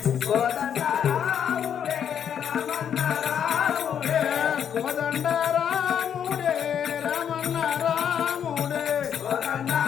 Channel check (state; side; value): quieter; right; 8.6 dB